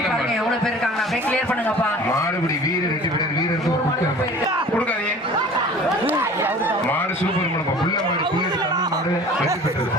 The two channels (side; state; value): both; normal; correlation 0.45